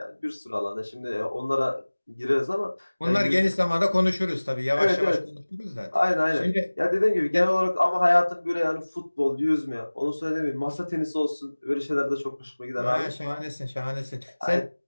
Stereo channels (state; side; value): inverted; both; correlation -1.00